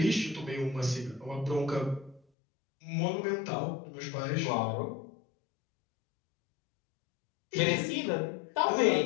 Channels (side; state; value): right; drops out; at 2.2 s